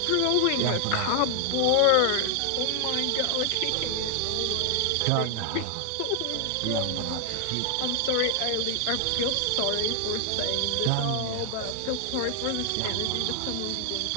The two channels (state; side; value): different; both; correlation 0.00